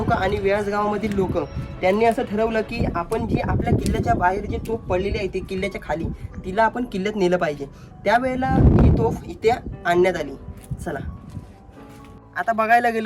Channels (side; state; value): both; identical; correlation 1.00